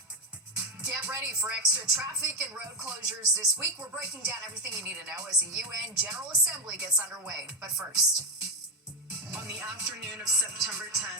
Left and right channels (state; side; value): normal; both; correlation 0.10